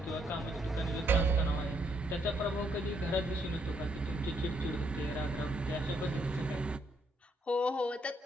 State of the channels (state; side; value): normal; both; correlation 0.73